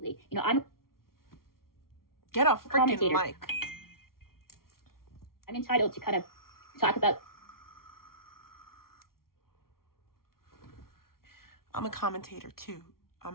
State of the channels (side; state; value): right; late; 0.93 ms